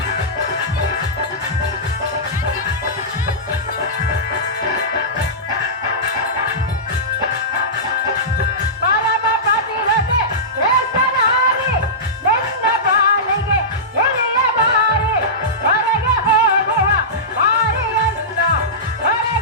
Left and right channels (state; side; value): normal; both; correlation -0.16